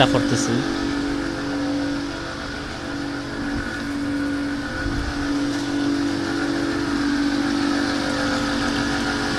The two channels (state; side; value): identical; both; correlation 1.00